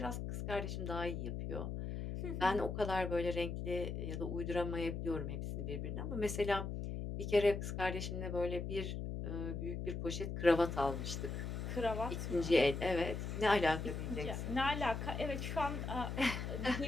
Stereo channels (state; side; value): noise; left; hum, 4 dB below the sound